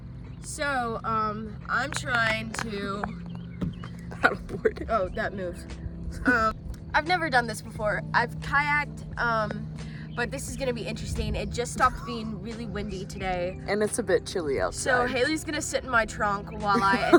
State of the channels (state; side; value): identical; both; correlation 1.00